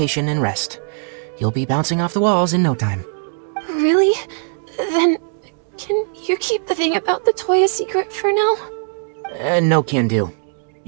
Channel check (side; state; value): left; silent; digital silence